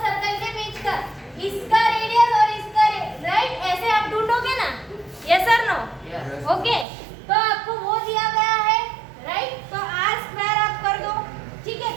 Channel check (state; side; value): drops out; left; at 6.9 s